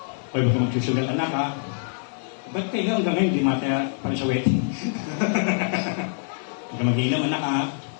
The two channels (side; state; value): right; silent; 62 dB below the other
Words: Pwede ba ka magsusugal anak ha? Ba't kayo hanggang ngayon di mata para sa wedding? Huwag ka mag-inom anak ha?